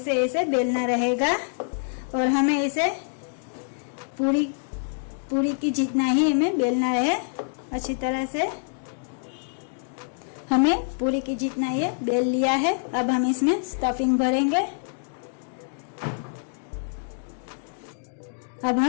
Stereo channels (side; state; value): right; silent; digital silence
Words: से ऐसे बेलना रहेगा। और हमें इसे पूरी की जितना ही हमें बेलना है। अच्छी तरह से हमें पूरी की जितना ये बेल लिया है। अब हम इसमें स्टफिंग भरेंगे। अब